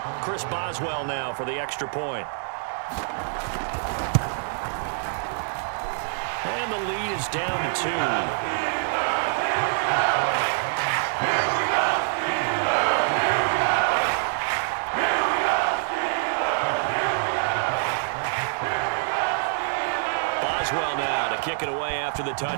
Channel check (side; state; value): left; silent; 61 dB below the other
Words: Chris Boswell now for the extra point. And the lead is down to 2. Boswell now to kick it away after the